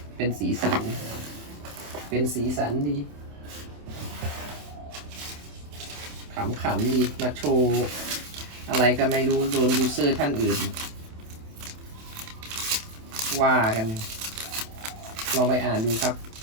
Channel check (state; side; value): late; left; 27 ms